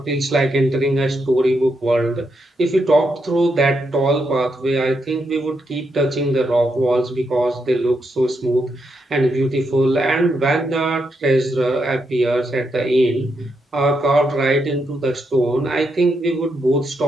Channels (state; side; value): normal; both; correlation 0.81